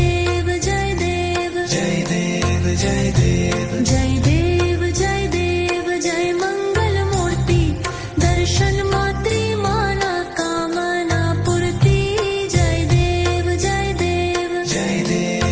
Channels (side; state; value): both; identical; correlation 1.00